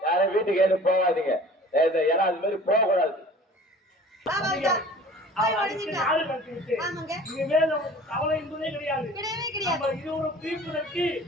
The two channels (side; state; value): both; normal; correlation 0.45